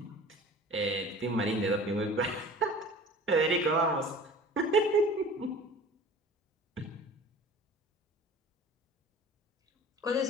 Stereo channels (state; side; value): normal; both; correlation 0.43